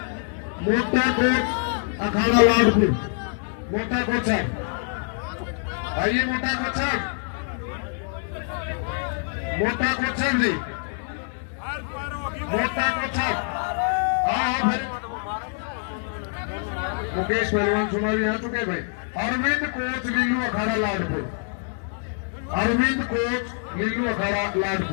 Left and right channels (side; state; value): right; silent; 59 dB below the other